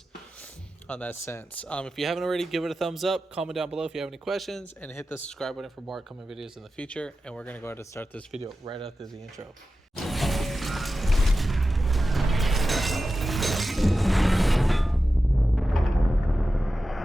on that sense. If you haven't already, give it a thumbs up. Comment down below if you have any questions, and hit the subscribe button for more upcoming videos in the future. And we're going to go ahead and start this video right after the intro.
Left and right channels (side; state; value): both; normal; correlation 0.93